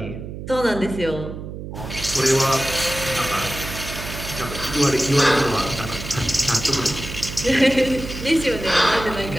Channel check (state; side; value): noise; right; hum, 9 dB below the sound